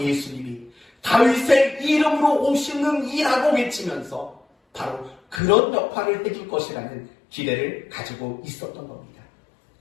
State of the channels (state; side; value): drops out; right; at 5.4 s